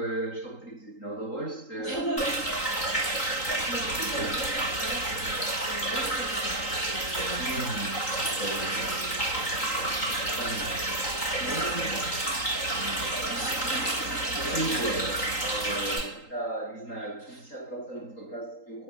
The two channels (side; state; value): right; late; 3.8 ms